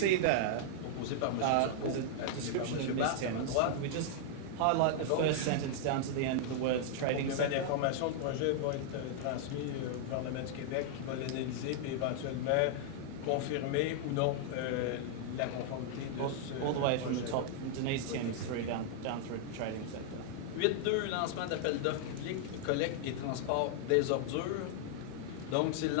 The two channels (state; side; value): different; both; correlation -0.01